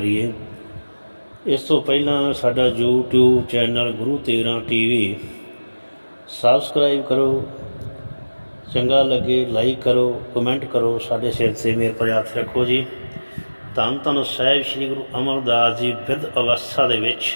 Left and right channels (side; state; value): both; inverted; correlation -1.00